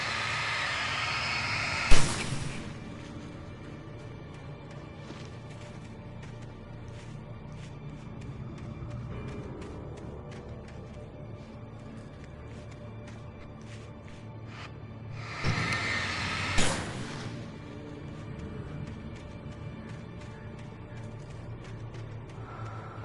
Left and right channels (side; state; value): both; identical; correlation 1.00